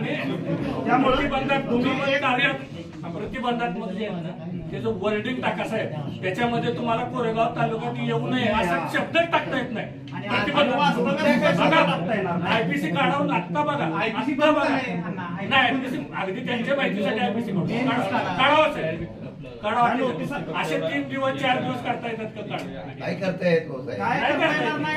त्यामुळे प्रतिबंधात्मक जे आहे ना त्याचं वर्डिंग टाका साहेब. त्याच्यामध्ये तुम्हाला कोरेगाव तालुक्यात येऊ नये असा शब्द टाकता येत नाही. आयपीसी काढून आत्ता बघा. आयपीसी बघा नाही आयपीसी अगदी त्यांच्या माहितीसाठी आयपीसी काढावंच आहे. काढावं असे 3 दिवस 4 दिवस काढता येतात का? काय करता येत हो साहेब? काय करता येणार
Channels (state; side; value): identical; both; correlation 1.00